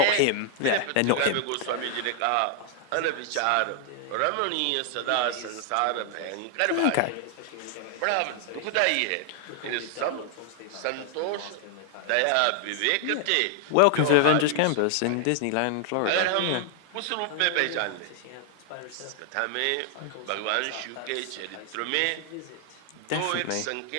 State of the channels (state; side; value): different; both; correlation 0.00